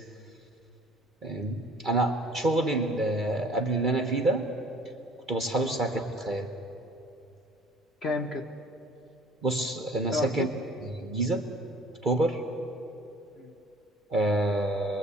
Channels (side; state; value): both; normal; correlation 0.51